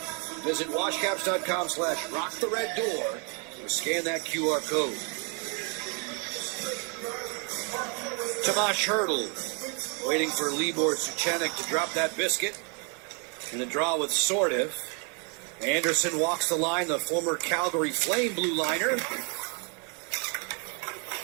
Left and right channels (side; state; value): left; quieter; 36.7 dB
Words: Visit washcaps.com/rockthereddoor to scan that QR code. Tomas Hertl waiting for Libor Suchanek to drop that biscuit. In the draw with Sordiv. Anderson walks the line, the former Calgary Flame blue liner.